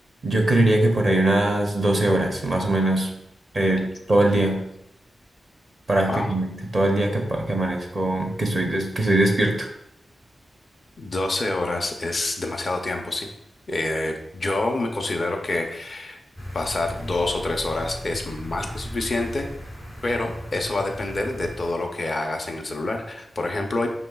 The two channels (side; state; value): both; normal; correlation 0.87